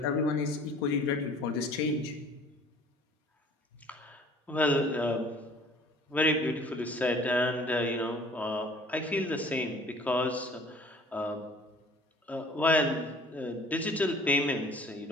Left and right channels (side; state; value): both; normal; correlation 0.51